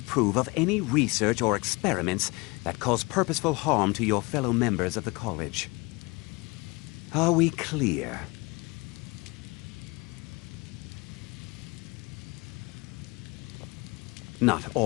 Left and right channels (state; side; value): quieter; right; 25.8 dB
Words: of any research or experiments that cause purposeful harm to your fellow members of the college. Are we clear? Not